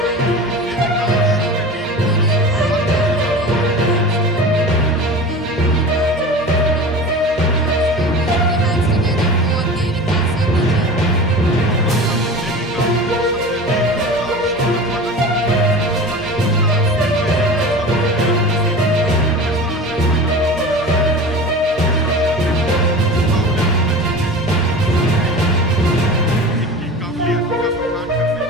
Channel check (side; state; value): both; normal; correlation 0.34